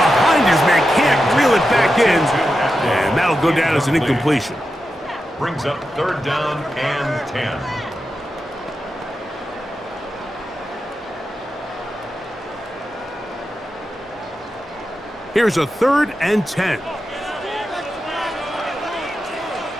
his man. Can't reel it back in. And that'll go down as an incompletion. Brings up third down and 10. Here's a third and 10.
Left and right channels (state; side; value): normal; both; correlation 0.90